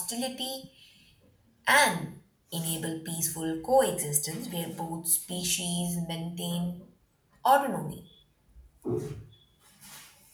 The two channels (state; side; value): identical; both; correlation 1.00